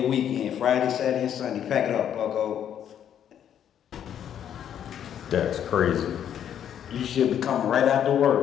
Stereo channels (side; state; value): right; quieter; 9.6 dB